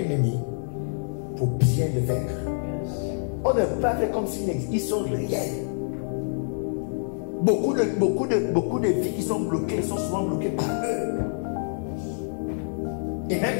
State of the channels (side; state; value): right; silent; digital silence